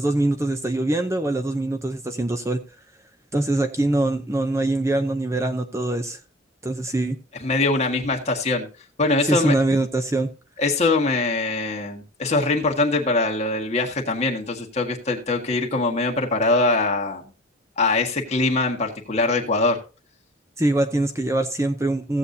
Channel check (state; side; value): normal; both; correlation 0.44